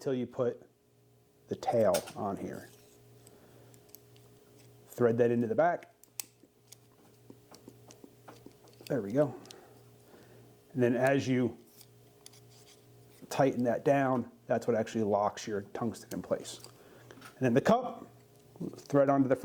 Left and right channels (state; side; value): identical; both; correlation 1.00